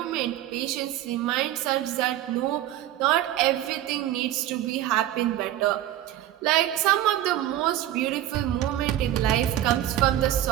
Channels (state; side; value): quieter; left; 13.1 dB